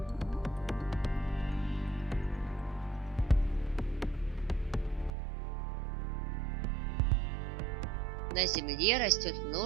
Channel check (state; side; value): drops out; left; at 5.1 s